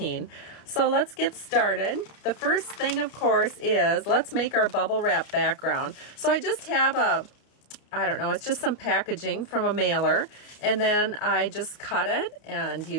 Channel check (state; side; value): late; right; 31 ms